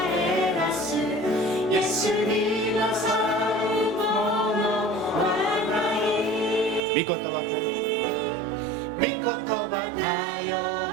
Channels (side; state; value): left; drops out; at 6.8 s